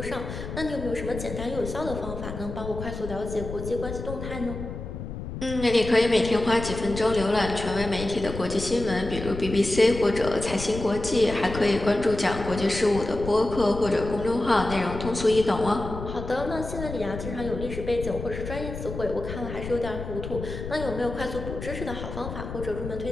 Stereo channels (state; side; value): noise; left; rumble, 8 dB below the sound